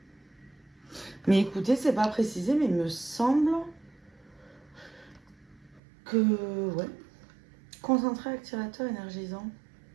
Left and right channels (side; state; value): left; drops out; at 5.8 s